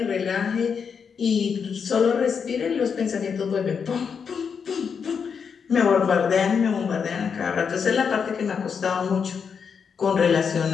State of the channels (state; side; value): quieter; right; 6.4 dB